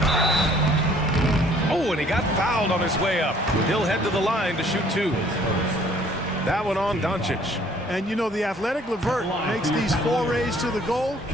Oh, and he got fouled on his way up. He'll head to the line to shoot 2. That one on Doncic. And you know, the athletic LeVert makes these forays to the goal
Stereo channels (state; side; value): normal; both; correlation 0.58